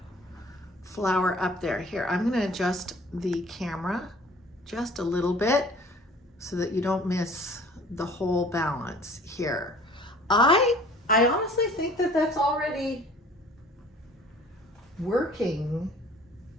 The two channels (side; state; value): both; normal; correlation 0.50